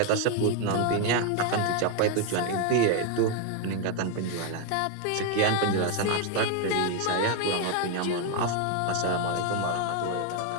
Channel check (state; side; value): different; both; correlation 0.01